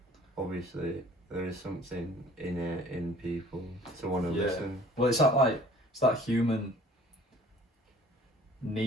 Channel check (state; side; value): normal; both; correlation 0.51